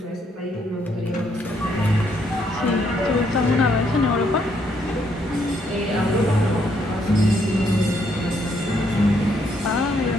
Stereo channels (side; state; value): both; normal; correlation 0.72